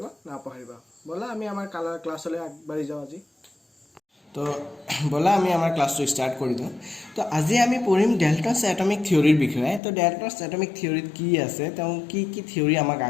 নাপাহৰিবা। বলা আমি আমাৰ ক্লাছলৈ আগবাঢ়ি যাওঁ আজি। তো বলা আমি আমাৰ ক্লাছটো স্টাৰ্ট কৰি দিওঁ। তো আজি আমি পঢ়িম ডেল্টনছ এটমিক থিওৰিৰ বিষয়ে। তো ডেল্টনছ এটমিক থিওৰিত কি আছে, তেওঁ কি কি থিওৰি আমাক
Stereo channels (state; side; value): drops out; right; at 9.8 s